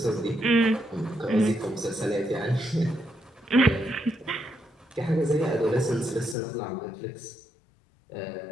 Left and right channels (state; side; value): drops out; right; at 6.4 s